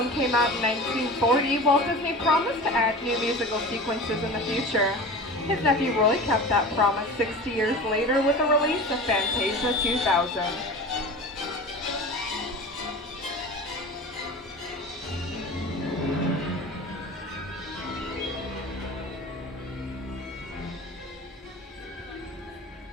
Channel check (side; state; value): both; normal; correlation 0.34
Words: came out in 1940, Walt Disney promised to add new musical sequences in the future. His nephew Roy kept that promise 60 years later with the release of Fantasia 2000.